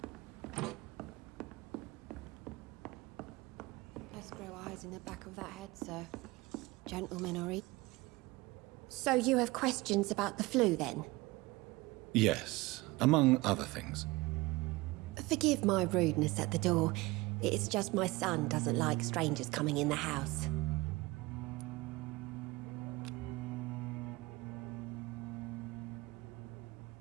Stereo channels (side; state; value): left; quieter; 21.7 dB